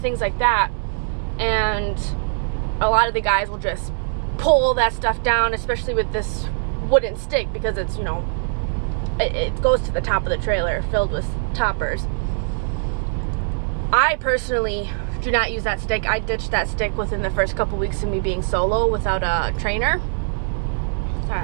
things like that. And a lot of the guys will just pull that stuff down, especially with this wooden stick, because it's, you know, it goes to the top of the trailer filled with toppers. I personally do not use that stick. I ditched that stick within the first couple weeks of me being solo without a trainer. Sorry,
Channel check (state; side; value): silent; left; 64 dB below the other